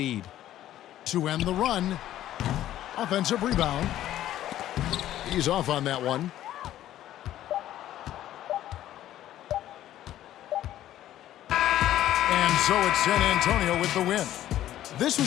To end the run, offensive rebound. He's off on that one. And so it's San Antonio with the win. This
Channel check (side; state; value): right; quieter; 12.9 dB